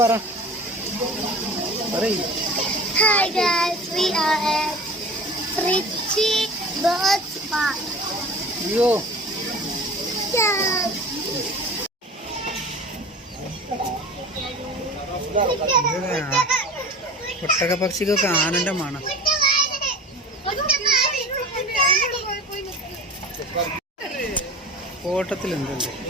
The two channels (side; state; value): both; normal; correlation 0.38